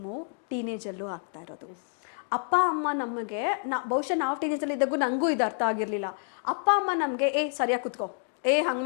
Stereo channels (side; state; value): right; silent; 59 dB below the other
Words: ಟೀನೇಜ್ ಅಲ್ಲೂ ಆಗ್ತಾ ಇರೋದು. ಅಪ್ಪ ಅಮ್ಮ ನಮಗೆ ಬಹುಶಃ ನಾವು ಟೀನೇಜ್ ಅಲ್ಲಿ ಇದ್ದಾಗೂ ನಂಗೂ ಇದು ಅರ್ಥ ಆಗಿರ್ಲಿಲ್ಲ. ಅಪ್ಪ ಅಮ್ಮ ನಮ್ಗೆ ಸರಿಯಾಗಿ ಕುತ್ಕೋ, ಹಂಗ್